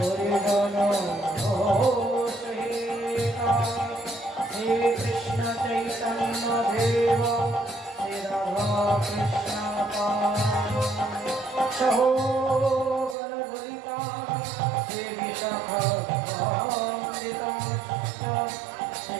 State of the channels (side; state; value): left; drops out; at 13.2 s